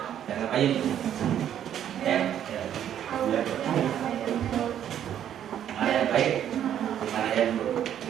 Yang ngapain? Mana yang baik, mana yang buruk?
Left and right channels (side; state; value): left; quieter; 10.2 dB